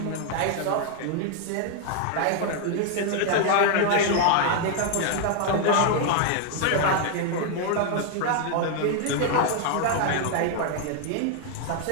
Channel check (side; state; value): both; different; correlation 0.00